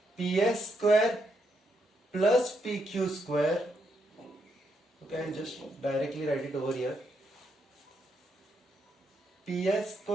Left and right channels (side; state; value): both; normal; correlation 0.79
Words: PS square plus PQ square, okay, I'll just directly write it over here, PS